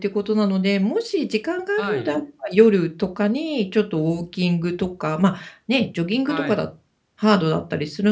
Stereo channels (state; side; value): identical; both; correlation 1.00